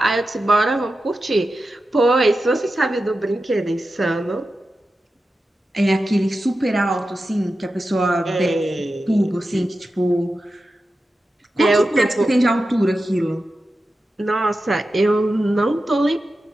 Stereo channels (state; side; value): normal; both; correlation 0.92